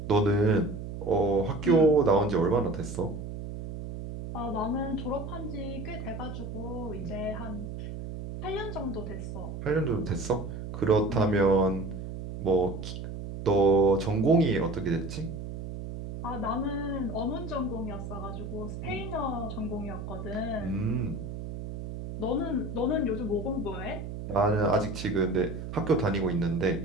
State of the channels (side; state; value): right; noise; hum, 8 dB below the sound